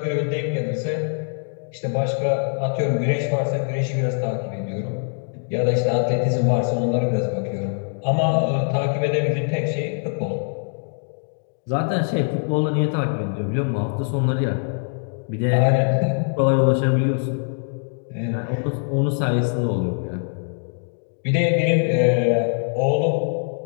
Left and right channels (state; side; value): silent; right; 64 dB below the other